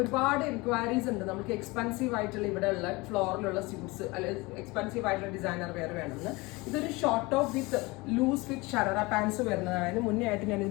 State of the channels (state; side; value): quieter; right; 23.8 dB